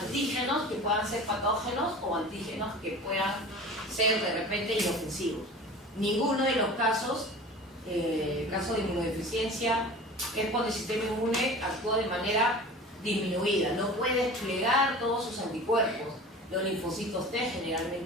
que puedan ser patógenos o antígenos que puedan ser de repente inofensivos. Ninguno de los casos, caso de inmunodeficiencia, es cuando el sistema inmune actúa de manera disminuida, no puede desplegar todos sus anticuerpos. Los linfocitos T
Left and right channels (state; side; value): normal; both; correlation 0.38